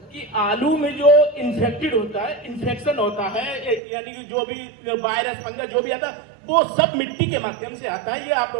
कि आलू में जो इन्फेक्टेड होता है, इन्फेक्शन होता है, यानी कि जो भी वायरस फंगस जो भी आता है वो सब मिट्टी के माध्यम से आता है। ये आप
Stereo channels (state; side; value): drops out; left; at 3.8 s